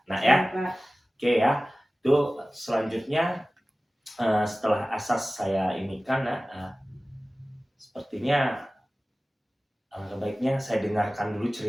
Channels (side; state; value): both; normal; correlation 0.97